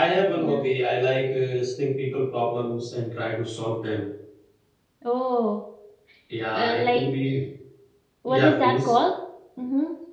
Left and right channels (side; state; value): both; identical; correlation 1.00